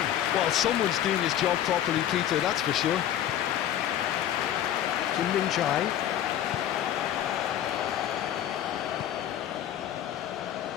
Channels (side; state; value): right; quieter; 11.1 dB